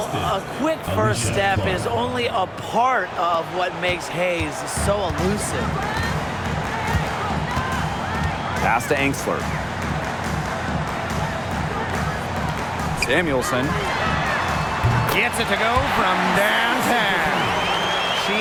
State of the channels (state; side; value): identical; both; correlation 1.00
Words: a quick first step is only a part of what makes Hayes so elusive. Pass to Angsler. Samuelson gets it to go from downtown. She